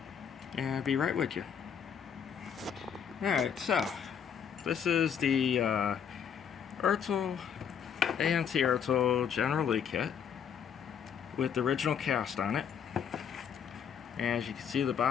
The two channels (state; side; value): quieter; right; 7.8 dB